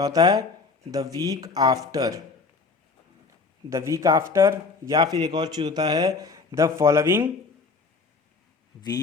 होता है, the week after, the week after, या फिर एक और चीज़ होता है the following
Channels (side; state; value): right; quieter; 4.4 dB